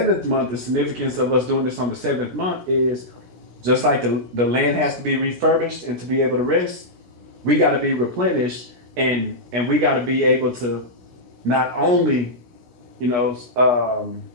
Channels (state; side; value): late; left; 17 ms